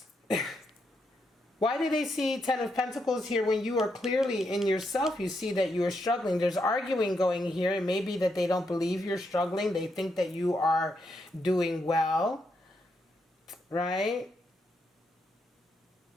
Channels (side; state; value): both; normal; correlation 0.80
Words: Why do they see Ten of Pentacles here when you are clearly in yourself? You see that you are struggling. There's arguing going here. It may be that they don't believe you're struggling. They think that you are doing well, right?